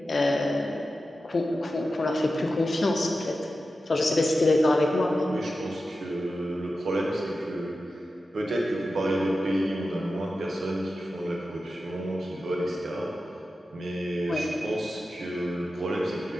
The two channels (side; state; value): both; normal; correlation 0.92